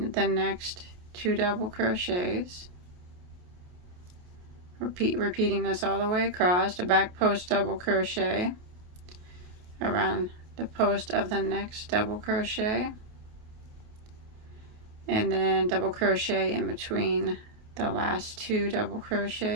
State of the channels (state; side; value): late; left; 28 ms